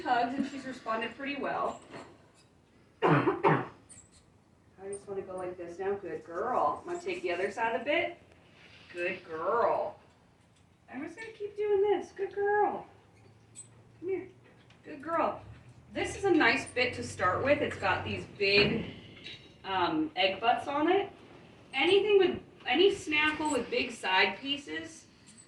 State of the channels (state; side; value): identical; both; correlation 1.00